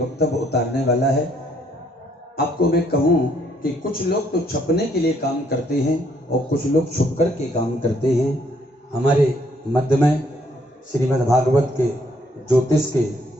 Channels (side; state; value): both; normal; correlation 0.68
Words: वक्तव्य उतारने वाला है। आपको मैं कहूँ कि कुछ लोग तो छपने के लिए काम करते हैं और कुछ लोग छुप कर के काम करते हैं। हमारे मध्य में श्रीमद् भागवत के ज्योतिष के